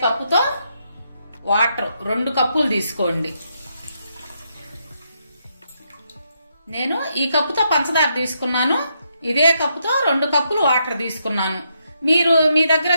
కప్పుతో వాటర్ 2 కప్పులు తీసుకోండి. నేను ఈ కప్పుతో పంచదార తీసుకున్నాను. ఇదే కప్పుతో 2 కప్పులు వాటర్ తీసుకున్నాను. మీరు మీ దగ్గర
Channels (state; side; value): inverted; both; correlation -0.79